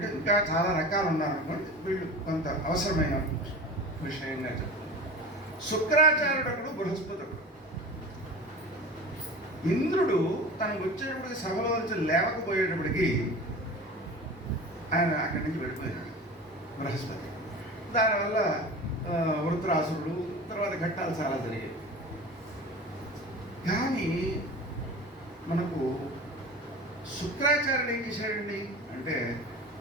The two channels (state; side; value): normal; both; correlation 0.35